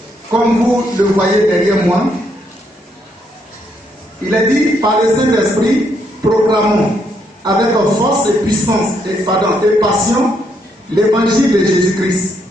comme vous le voyez derrière moi, il est dit par le Saint-Esprit, proclamons avec force et puissance et passion l'évangile de Jésus-Christ.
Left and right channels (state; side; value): normal; both; correlation 0.74